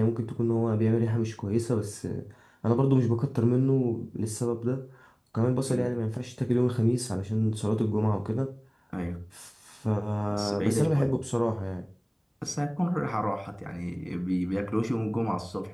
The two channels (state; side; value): identical; both; correlation 1.00